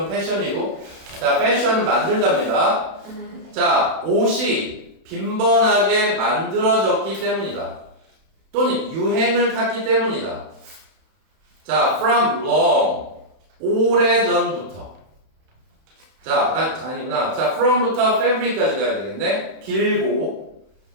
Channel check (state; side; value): late; left; 31 ms